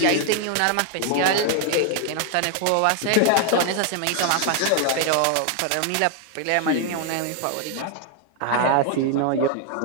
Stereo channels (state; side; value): different; both; correlation 0.00